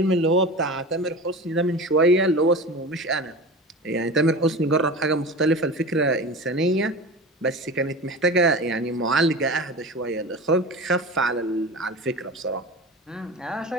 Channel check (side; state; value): both; normal; correlation 0.31